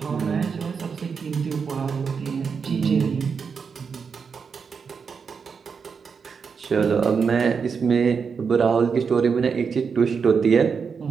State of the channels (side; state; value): left; quieter; 5.9 dB